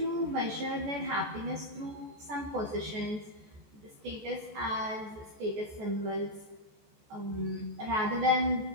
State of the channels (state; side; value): late; left; 14 ms